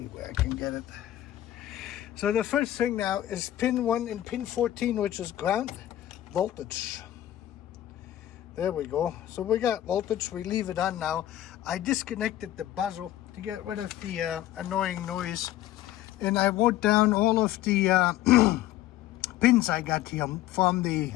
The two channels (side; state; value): right; quieter; 13.5 dB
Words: where I can get it. So the first thing now is pin 1 and pin 14, which is ground voltage. There we go. So we got voltage. We leave it on now. I disconnected the buzzer to get rid of the annoying noise, and I wrote down all of the pins I got here from the